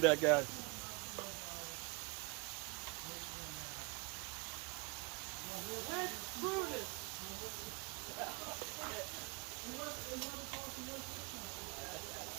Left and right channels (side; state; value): left; quieter; 29.0 dB